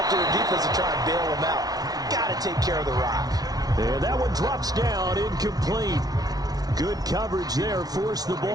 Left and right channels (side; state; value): left; late; 0.19 ms